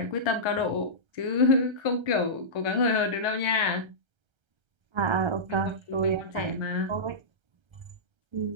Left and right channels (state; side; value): late; left; 1.3 ms